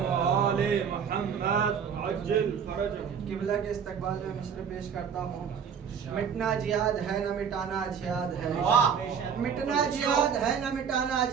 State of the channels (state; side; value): quieter; left; 7.2 dB